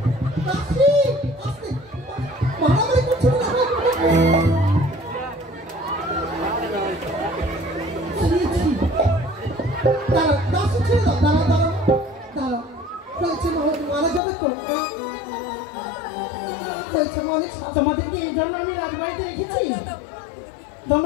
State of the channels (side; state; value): right; drops out; at 14.2 s